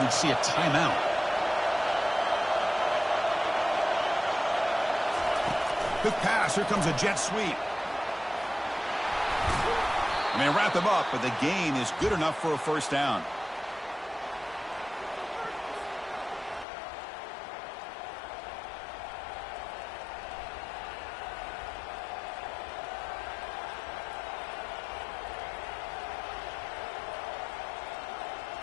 see a timeout. Quick pass. Here comes a jet sweep. And they wrap him up, but the gain is good enough for a first down.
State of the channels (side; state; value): right; drops out; at 16.7 s